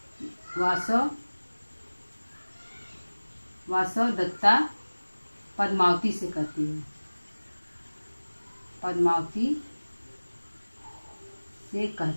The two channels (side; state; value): both; inverted; correlation -1.00